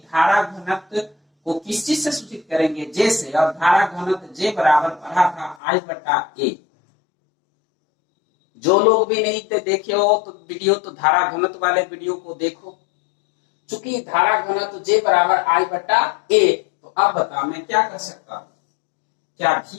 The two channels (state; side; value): drops out; right; at 5.6 s